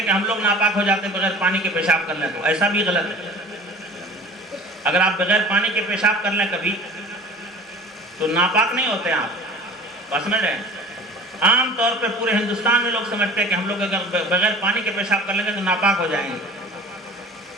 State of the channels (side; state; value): both; normal; correlation 0.42